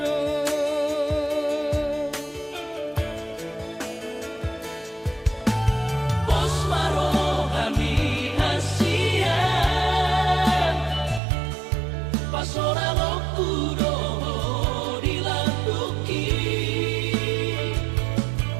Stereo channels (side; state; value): left; drops out; at 11.2 s